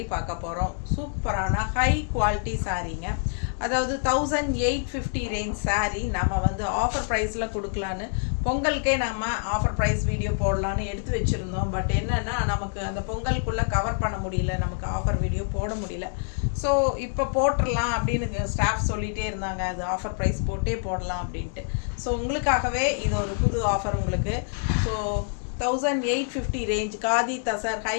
பார்க்க போகிறோம். சூப்பரான ஹை குவாலிட்டி சாரீங்க. அதாவது 1850 ரேஞ்ச் சாரீ நம்ம வந்து ஆஃபர் ப்ரைஸில் கொடுக்கலான்னு பொங்கலுக்கே நம்ம ஆஃபர் ப்ரைஸ் வீடியோ போடலான்னு எடுத்து வச்சுருந்தோம். பட் என்னென்னா நமக்கு அந்த பொங்கலுக்குள்ளே கவர் பண்ண முடியல, நமக்கு ஆஃபர் வீடியோ போட முடியல. ஸோ இப்போ போட்டுடலாம் அப்படின்னு ஸ்டாஃப் சொல்லிகிட்டே இருந்தாங்க, அது ஆஃபர் ப்ரைஸ் போட்டே போடலாம் அப்படின்ட்டு. ஸோ உங்களுக்காகவே இது ஒரு புது ஆஃபர் உங்களுக்கு. So 1850 range khadi tussar high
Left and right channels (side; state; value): right; silent; 61 dB below the other